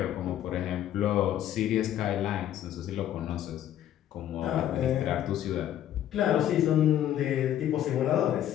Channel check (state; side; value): quieter; right; 11.4 dB